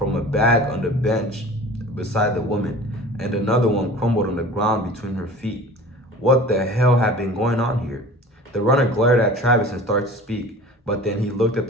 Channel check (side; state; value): both; normal; correlation 0.40